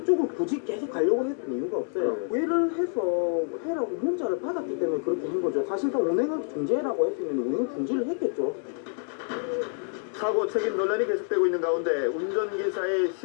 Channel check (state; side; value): silent; right; 56 dB below the other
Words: 굳이 계속 가려고 했던 이유가 없어요. 외를 해서 해라고 문자를 받았기 때문에 그렇게 한 거죠. 사실상 운행을 중지해라고 했으면 운행을 중지를 했겠죠. 사고 책임 논란이 계속되고 있는 가운데 운전기사의